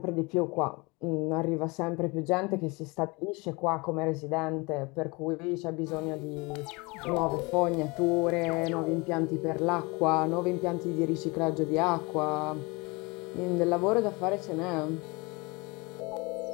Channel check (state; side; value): quieter; right; 26.6 dB